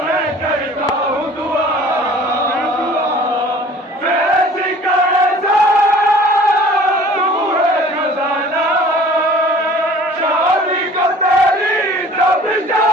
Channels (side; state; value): both; normal; correlation 0.48